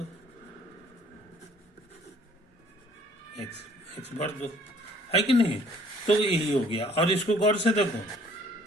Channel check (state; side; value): normal; both; correlation 0.57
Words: एक्स भर दो, है कि नहीं। तो यही हो गया। और इसको गौर से देखो,